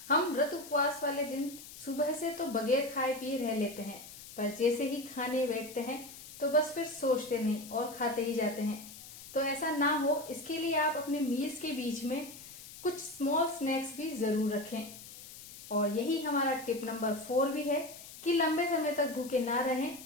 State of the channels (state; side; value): noise; left; hiss, 15 dB below the sound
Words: हम व्रत उपवास वाले दिन सुबह से तो बगैर खाए पिए रह लेते हैं, पर जैसे ही खाने बैठते हैं तो बस फिर सोचते नहीं और खाते ही जाते हैं। तो ऐसा ना हो, इसके लिए आप अपने मील्स के बीच में कुछ स्मॉल स्नैक्स भी जरूर रखें। और यही हमारा टिप नंबर 4 भी है कि लंबे समय तक भूखे ना रहें